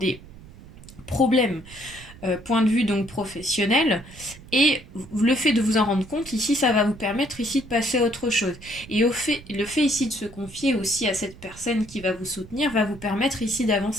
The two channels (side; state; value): right; noise; rumble, 19 dB below the sound